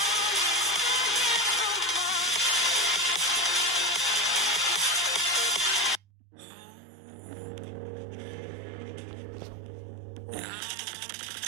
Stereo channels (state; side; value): drops out; left; at 6.0 s